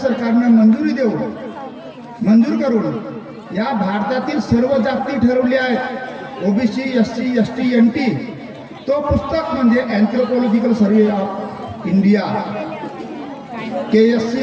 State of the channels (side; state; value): both; identical; correlation 1.00